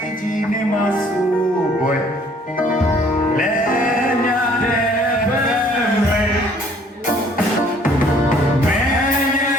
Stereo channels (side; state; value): both; normal; correlation 0.58